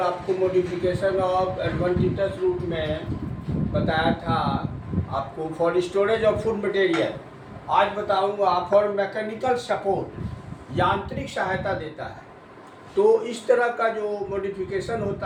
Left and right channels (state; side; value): identical; both; correlation 1.00